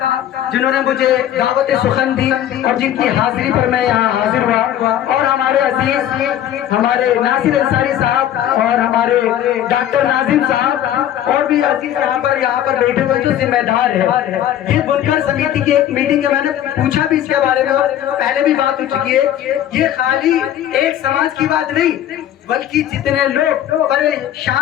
जिन्होंने मुझे दावत सुखन दी और जिनकी हाजिरी पर मैं यहाँ हाजिर हुआ। और हमारे अजीज हमारे नासिर अंसारी साहब और हमारे डॉक्टर नाजिम साहब और भी अजीज यहाँ पर बैठे हुए जो जिम्मेदार है। ये बुनकर समिति की एक मीटिंग है, मैंने पूछा भी इसके बारे में और पहले भी बात हो चुकी है। ये खाली एक समाज की बात नहीं, बल्कि जितने लोग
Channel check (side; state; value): right; quieter; 11.3 dB